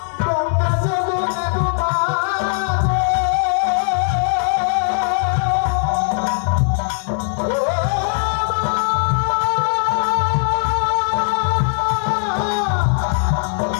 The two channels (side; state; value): right; silent; digital silence